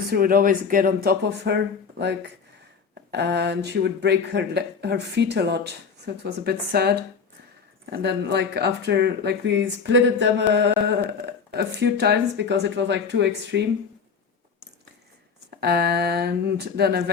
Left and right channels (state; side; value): quieter; right; 5.9 dB